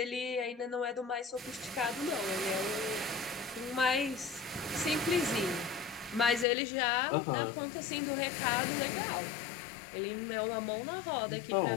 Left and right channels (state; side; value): drops out; right; at 6.5 s